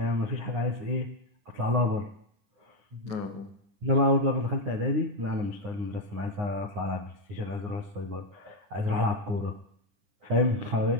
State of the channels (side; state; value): left; late; 9.8 ms